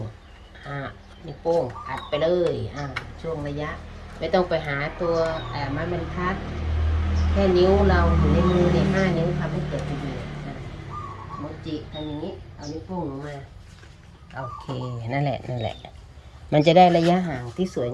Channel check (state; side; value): identical; both; correlation 1.00